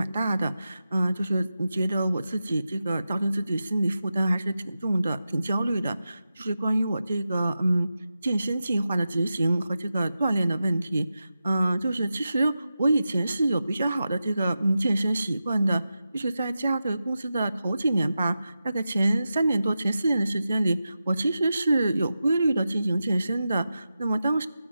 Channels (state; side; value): inverted; both; correlation -0.91